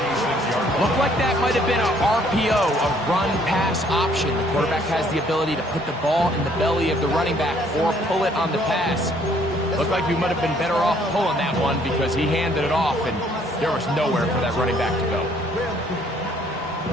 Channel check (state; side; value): normal; both; correlation 0.63